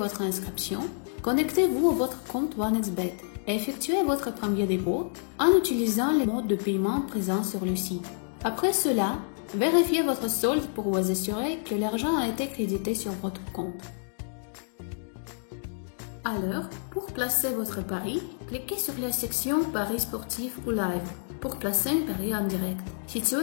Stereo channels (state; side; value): silent; right; digital silence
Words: inscription, connectez-vous à votre compte OneXBet et effectuez votre premier dépôt en utilisant les modes de paiement présents sur le site. Après cela, vérifiez votre solde pour vous assurer que l'argent a été crédité sur votre compte. Alors, pour placer votre pari, cliquez sur la section Paris sportif ou live pour placer un pari en direct, situé